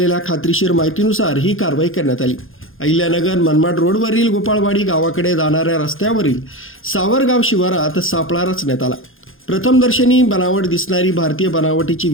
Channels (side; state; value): right; late; 0.60 ms